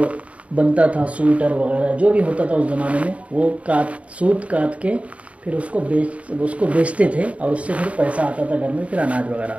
بنتا تھا، سویٹر وغیرہ جو بھی ہوتا تھا اس زمانے میں، وہ سوت کاٹ کے پھر اس کو بیچتے تھے اور اس سے پھر پیسہ آتا تھا گھر میں، پھر اناج وغیرہ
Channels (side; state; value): left; late; 0.065 ms